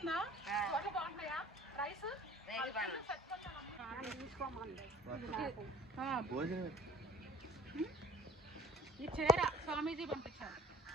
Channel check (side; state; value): both; normal; correlation 0.48